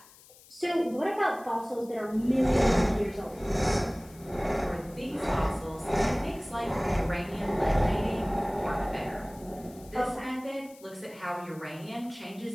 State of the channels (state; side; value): noise; left; hiss, 23 dB below the sound